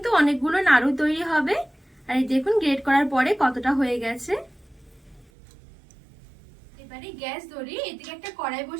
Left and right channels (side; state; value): left; drops out; at 5.3 s